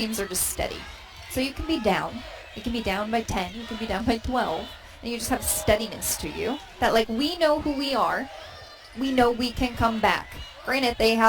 are just steady. So you can be down. You can be down by 10. You can be down by 12. And you just have steadiness to you. That, like, we know who we are. We know we can come back. Granted, they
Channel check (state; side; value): identical; both; correlation 1.00